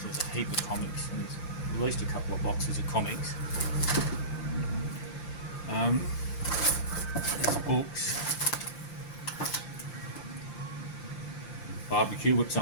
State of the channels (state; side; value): late; right; 5.8 ms